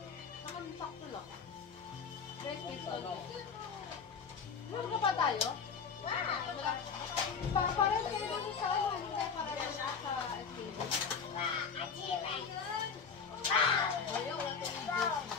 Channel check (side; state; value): right; quieter; 5.9 dB